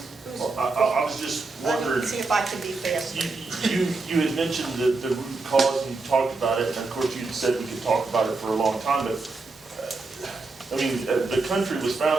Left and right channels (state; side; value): quieter; left; 3.7 dB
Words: Well, I was just Let me wondering, see if I can be faster. you had mentioned the root cause and you talked about it, and of course you had said we could talk about it for a long time, but, the country was